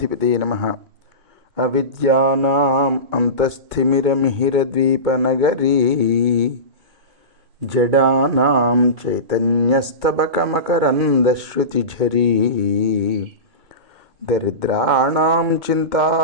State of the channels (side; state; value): left; late; 2.2 ms